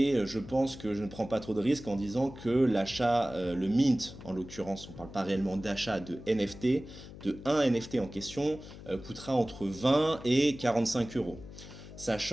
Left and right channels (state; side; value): noise; left; hum, 15 dB below the sound